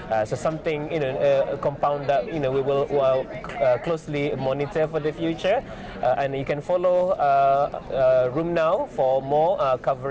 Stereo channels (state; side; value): identical; both; correlation 1.00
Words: So something, a compound that we will closely monitor for the future, and you can follow RheumNow for more